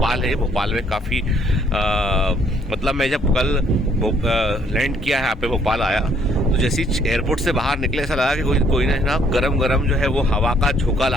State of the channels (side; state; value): both; normal; correlation 0.65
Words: है, भोपाल में काफ़ी मतलब मैं जब कल लैंड किया है यहाँ पे भोपाल आया तो जैसे ही एयरपोर्ट से बाहर निकले ऐसा लगा कि कोई ना गरम गरम जो है वो हवा का झोंका